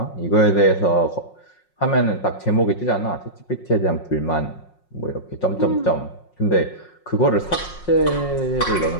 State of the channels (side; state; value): right; late; 5.5 ms